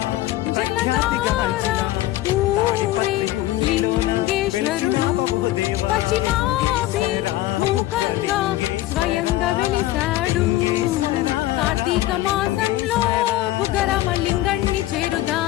జలధార ఊరే లింగేశ్వరుడు పశ్చిమాభిముఖంగా స్వయంగా వెలిశాడు. కార్తీక మాసంలో బుగ్గరామలింగణ్ణి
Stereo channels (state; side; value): quieter; right; 15.8 dB